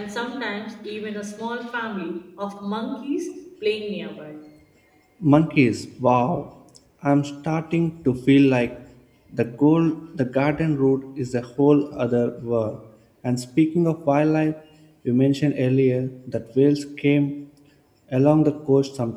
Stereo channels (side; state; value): both; identical; correlation 1.00